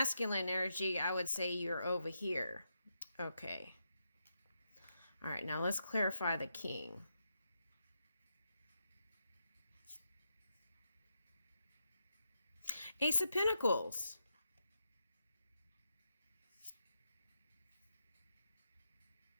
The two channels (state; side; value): inverted; both; correlation -0.84